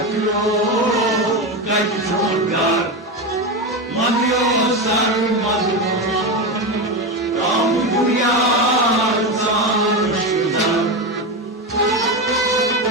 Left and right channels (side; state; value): both; normal; correlation 0.16